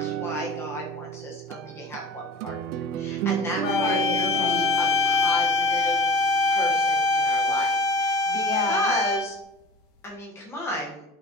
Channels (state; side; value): normal; both; correlation 0.38